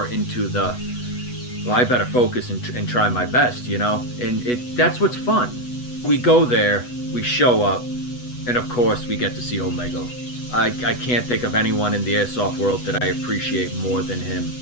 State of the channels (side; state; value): right; late; 8.1 ms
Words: into the well, I better focus and try my best, you know? And that's what's fun. We go there, we show up, and of course we get to see Omega. I can't think of anyone in the airsoft world that I appreciate more than him